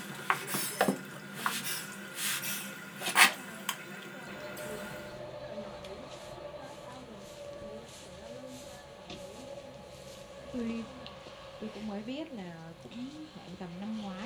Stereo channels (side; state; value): both; identical; correlation 1.00